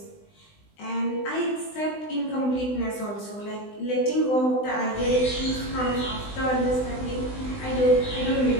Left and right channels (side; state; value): right; late; 20 ms